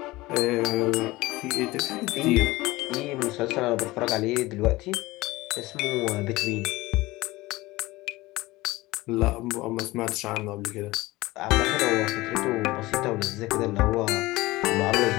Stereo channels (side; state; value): right; quieter; 19.7 dB